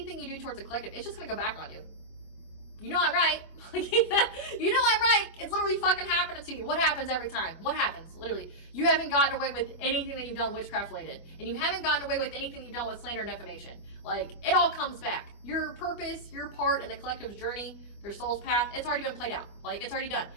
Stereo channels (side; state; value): right; late; 25 ms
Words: you do towards the collective, it's just going to go back on you. You know I'm right. You know I'm right. It's literally fucking happening to you. What happens every time? What happens? Literally. You haven't gotten away with anything that you've done witchcraft related. And you haven't gotten away with anything you've done with slander and defamation. Like, it all comes back. Your purpose, your part in the collective's journey, their soul's path, it's already been played out. Like, it's already done.